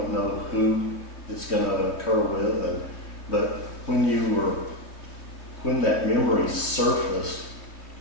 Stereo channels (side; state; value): right; late; 3.1 ms